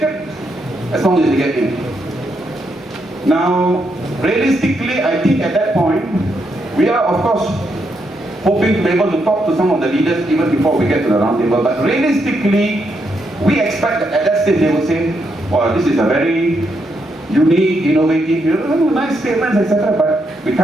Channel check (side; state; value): both; normal; correlation 0.79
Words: as long as they get in. Now, realistically, I think at that point, we are of course hoping to be able to talk to some of the leaders even before we get to the round table. But realistically, we expect that at that stage they will say, well, this is a very unique, innovative, nice statements, etc. But we